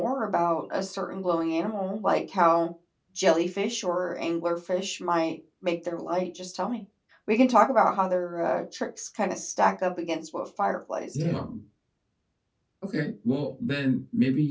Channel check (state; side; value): identical; both; correlation 1.00